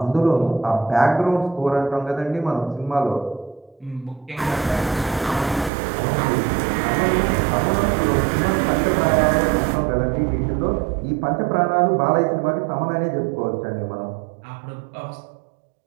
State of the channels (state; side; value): drops out; left; at 5.7 s